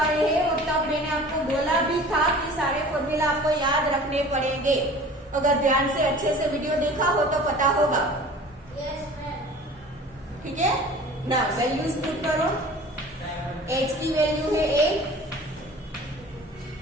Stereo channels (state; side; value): normal; both; correlation 0.43